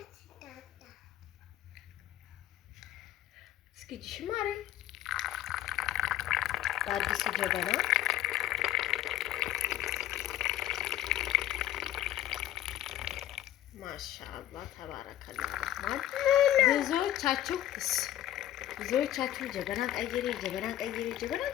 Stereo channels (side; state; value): right; quieter; 13.1 dB